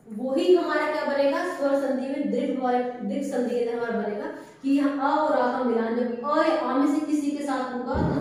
वही हमारा क्या बनेगा? स्वर संधि में दीर्घ संधि के अंदर हमारा बनेगा कि हम अ और आ का मिलान जब अ या आ में से किसी के साथ होगा तो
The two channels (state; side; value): identical; both; correlation 1.00